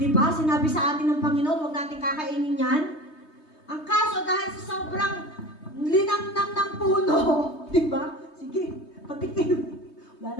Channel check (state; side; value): late; right; 3.2 ms